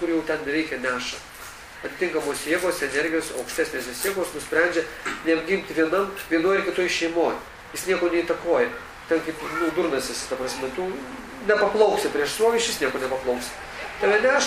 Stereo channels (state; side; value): identical; both; correlation 1.00